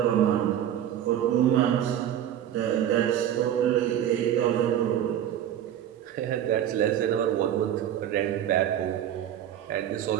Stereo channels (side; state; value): left; quieter; 10.7 dB